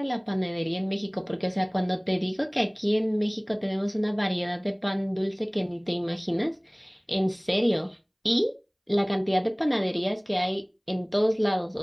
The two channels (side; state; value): both; identical; correlation 1.00